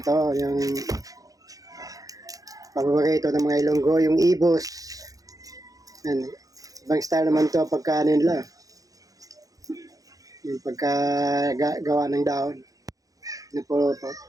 yung paborito ng mga Ilonggo, yung ibos. Ayan. Ibang style naman to pagka ano nila. Yung pagka gawa ng dahon. Nipulo-po.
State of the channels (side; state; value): left; late; 0.17 ms